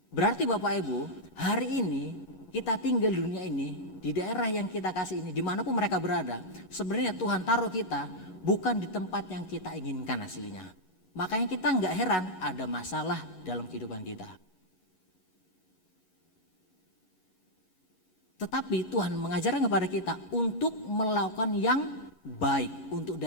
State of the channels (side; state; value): right; late; 11 ms